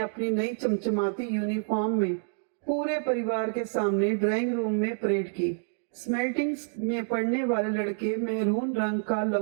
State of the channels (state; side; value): silent; left; digital silence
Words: नई चमचमाती यूनिफॉर्म में पूरे परिवार के सामने ड्राइंग रूम में परेड की। स्मेल्टिंग्स में पढ़ने वाले लड़के मेहरून रंग का